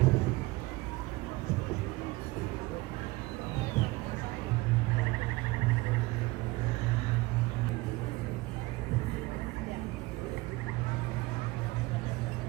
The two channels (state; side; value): quieter; left; 21.4 dB